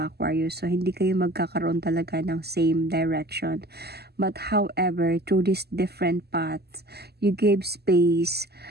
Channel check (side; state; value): left; late; 0.47 ms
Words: Aquarius. So, hindi kayo magkakaroon talaga ng same direction. But however, through these different paths, you gave space